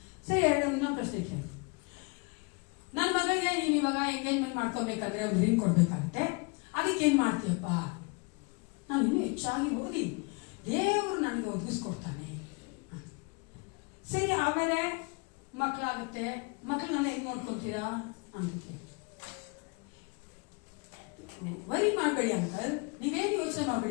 ಸರಿ, ಇನ್ನೊಂದು ಪ್ರಶ್ನೆ ಕೇಳಿ, ನನ್ನ ಮಗಳಿಗೆ ನೀನ್ ಇವಾಗ ಎಂಗೇಜ್ಮೆಂಟ್ ಮಾಡ್ಕೊಬೇಕಂದ್ರೆ ಒಂದು ರಿಂಗ್ ಕೊಡ್ಬೇಕಾಗತ್ತೆ, ಅದಕ್ಕೆ ಏನ್ ಮಾಡ್ತೀಯಪ್ಪ? ನಾನು ಇನ್ನೂ ಹೆಚ್ಚಾಗಿ ಓದಿ ದೇವ್ರು ನನಗೆ ಒದಗಿಸ್ಕೊಡ್ತಾನೆ. ಸರಿ, ಆಮೇಲೆ ಮಕ್ಳಾಗುತ್ತೆ, ಮಕ್ಳನ್ನ ಹೆಂಗ್ ನೋಡ್ಕೊತೀರಾ ಅಂತ. ವರಿ ಮಾಡಬೇಡಿ ಅಂಕಲ್, ನೀವೇನು ಯೋಚನೆ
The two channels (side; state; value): right; quieter; 30.9 dB